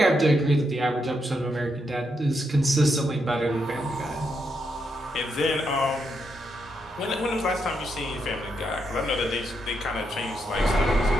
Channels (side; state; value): both; normal; correlation 0.81